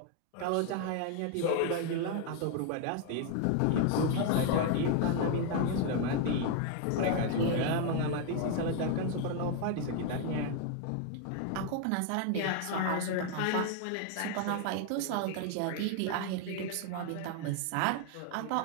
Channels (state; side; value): different; both; correlation 0.01